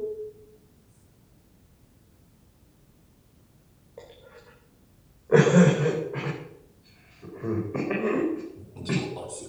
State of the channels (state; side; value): identical; both; correlation 1.00